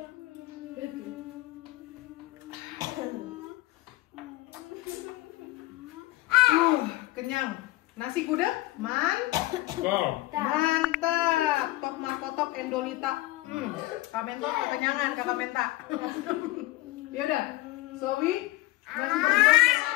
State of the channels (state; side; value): quieter; right; 18.5 dB